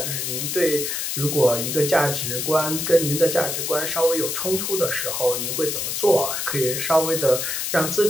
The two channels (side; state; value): left; noise; hiss, 2 dB below the sound